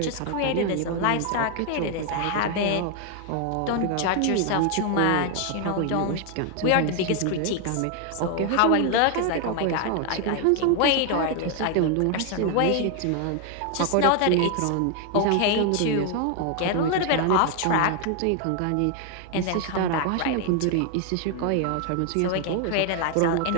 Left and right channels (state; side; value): different; both; correlation 0.00